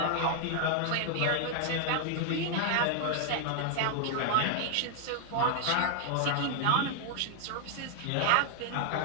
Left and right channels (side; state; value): both; different; correlation 0.00